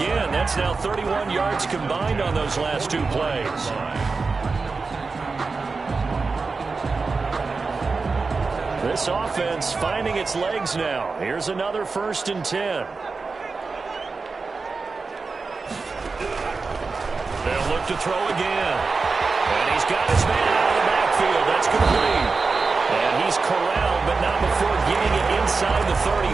That's now 31 yards combined on those last 2 plays. This offense finding its legs now. Here's another 1st and 10. They'll look to throw again. And he's got his man out of the backfield. That's complete. And he's corralled, but not before getting it inside the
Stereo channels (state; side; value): quieter; left; 4.3 dB